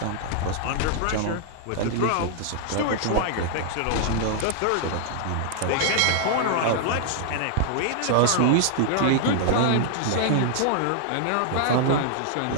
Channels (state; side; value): different; both; correlation -0.01